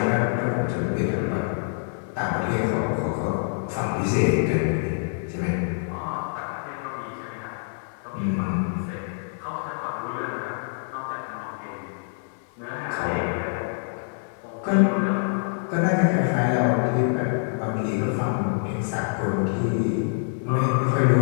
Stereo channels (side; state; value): right; silent; digital silence